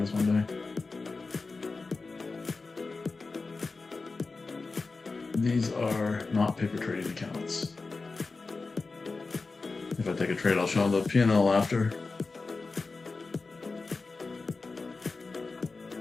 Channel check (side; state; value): right; quieter; 3.9 dB